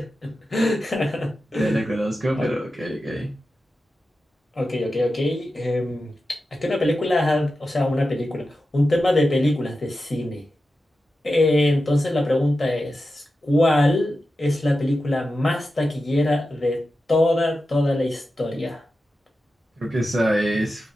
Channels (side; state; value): both; normal; correlation 0.91